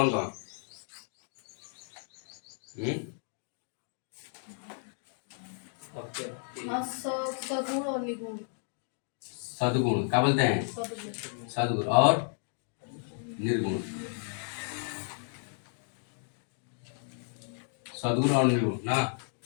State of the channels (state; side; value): silent; right; 56 dB below the other